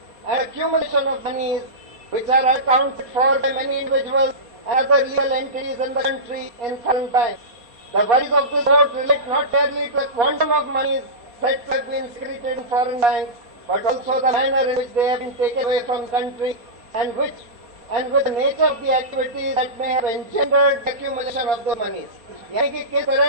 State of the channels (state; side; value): late; left; 4.2 ms